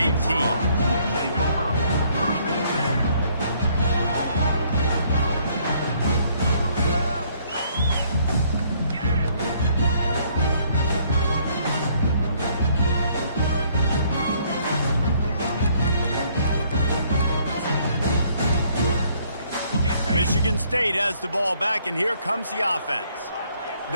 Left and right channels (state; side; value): inverted; both; correlation -0.65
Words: Michigan State has the ball back, and here comes the offense.